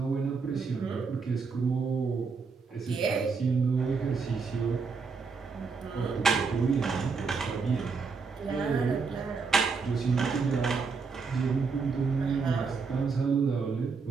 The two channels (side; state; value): left; quieter; 4.9 dB